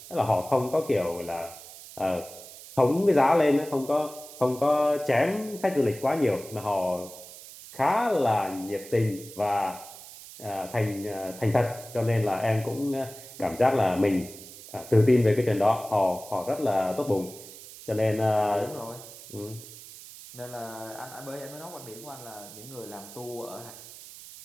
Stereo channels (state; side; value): noise; right; hiss, 16 dB below the sound